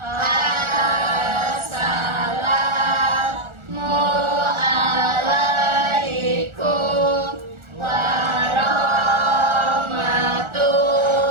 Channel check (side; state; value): left; late; 1.4 ms